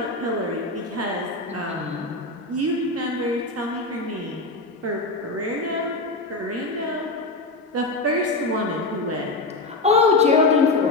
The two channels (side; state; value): right; quieter; 3.1 dB